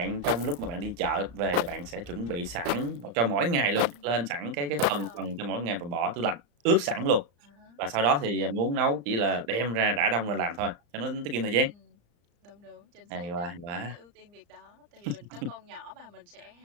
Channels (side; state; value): left; late; 34 ms